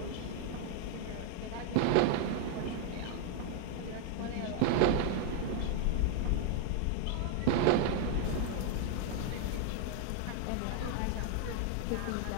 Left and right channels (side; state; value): both; different; correlation 0.00